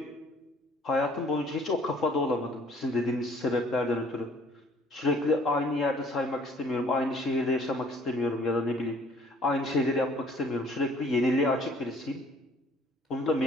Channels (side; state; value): both; normal; correlation 0.57